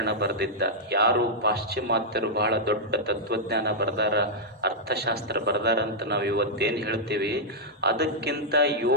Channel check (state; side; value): normal; both; correlation -0.07